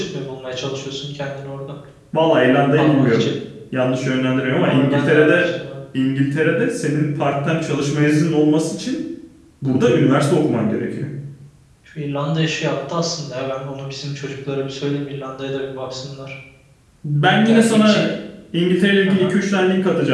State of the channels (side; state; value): both; identical; correlation 1.00